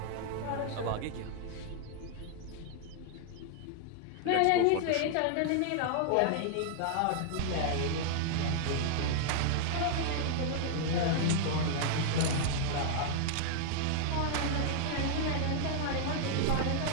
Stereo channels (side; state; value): both; different; correlation 0.00